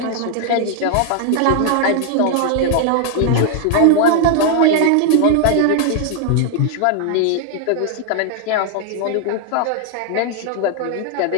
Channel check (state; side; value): different; both; correlation 0.00